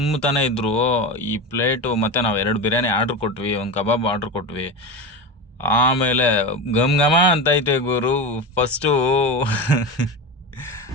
ಇದ್ರು ಈ ಪ್ಲೇಟು. ಮತ್ತು ನಾವು 2 ಬಿರಿಯಾನಿ ಆರ್ಡ್ರ್ ಕೊಟ್ವಿ, ಒಂದು ಕಬಾಬ್ ಆರ್ಡ್ರ್ ಕೊಟ್ವಿ. ಆಮೇಲೆ ಘಮ್ ಘಮ ಅಂತೈತೆ ಗುರು ಫಸ್ಟು.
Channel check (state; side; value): normal; both; correlation 0.23